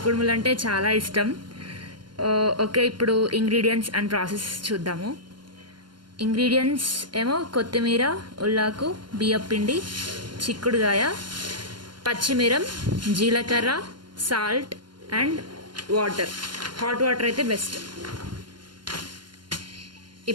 కుడుములు అంటే చాలా ఇష్టం. ఓకే, ఇప్పుడు ఇంగ్రీడియంట్స్ అండ్ ప్రాసెస్ చూద్దాము. ఇంగ్రీడియంట్స్ ఏమో కొత్తిమీర, ఉల్లాకు, బియ్యపిండి, చిక్కుడుగాయ, పచ్చిమిరం, జీలకర్ర, salt and water. Hot water అయితే బెస్ట్.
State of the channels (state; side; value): late; left; 0.71 ms